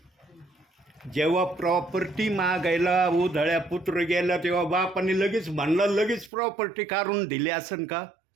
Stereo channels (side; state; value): left; drops out; at 6.3 s